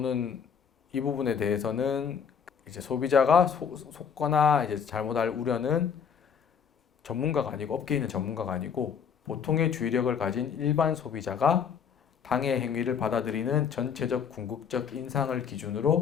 이 부분에 대해서는 이제 소비자가 속거나 이제 잘못 알 우려는 전문가가 아니고, 업계에 있는 전문가가 아니고 보통의 주의력을 가진 일반 소비자가 당해 행위를 받아들이는 전체적 궁극적 인상을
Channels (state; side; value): quieter; right; 7.1 dB